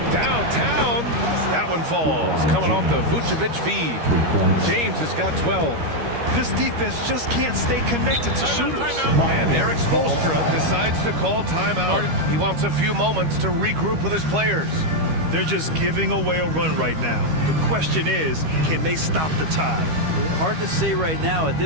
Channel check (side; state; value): left; late; 13 ms